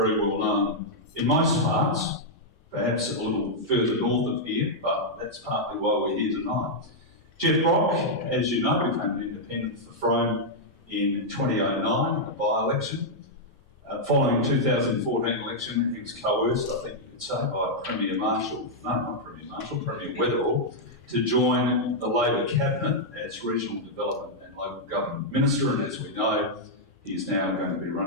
well known in most parts, perhaps a little further north of here, but that's partly why we're here tonight. Jeff Brock, as you know, became an independent for Frome in 2009 in the by-election. Following the 2014 election, he was coerced, I think you could say, by Premier Weatherall, to join the Labor Cabinet as Regional Development and Local Government Minister, and as we know, he is now going to be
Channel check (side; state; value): both; normal; correlation -0.05